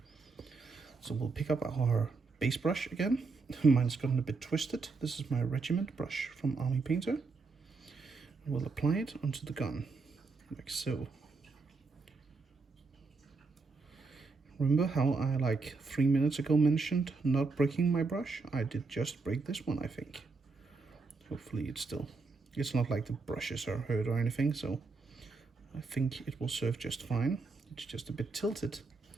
So we'll pick up our base brush again. Mine's gotten a bit twisted. This is my regiment brush from Army Painter. We'll apply it onto the gun, like so. Remember how I, like 3 minutes ago, mentioned not breaking my brush? I did just break this one, I think. Hopefully it's not like the brushes are hurt or anything, so I think it will serve just fine. It's just a bit tilted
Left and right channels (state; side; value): quieter; left; 4.1 dB